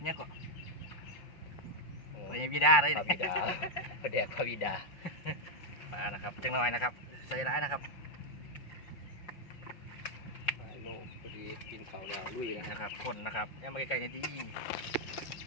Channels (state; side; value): late; right; 5.9 ms